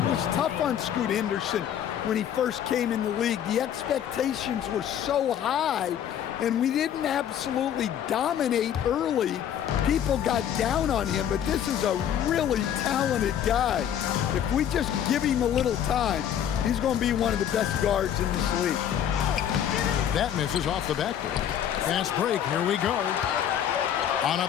was tough on Scoot Henderson when he first came in the league. The expectations were so high, and we didn't absolutely dominate early. People got down on him, but this is a really talented guy. If we just give him a little time, he's going to be one of the best guards in this league. That misses off the backboard. Fast break, here we go. On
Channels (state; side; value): quieter; right; 9.7 dB